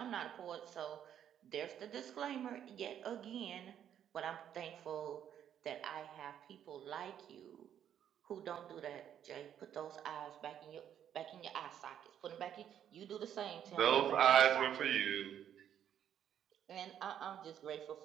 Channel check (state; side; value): quieter; left; 9.7 dB